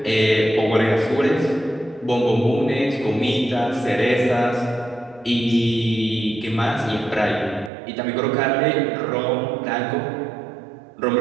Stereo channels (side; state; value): left; drops out; at 7.7 s